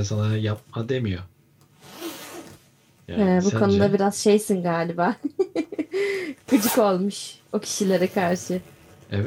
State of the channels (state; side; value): identical; both; correlation 1.00